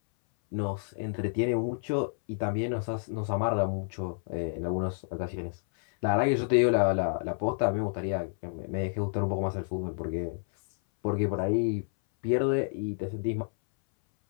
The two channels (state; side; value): silent; right; 58 dB below the other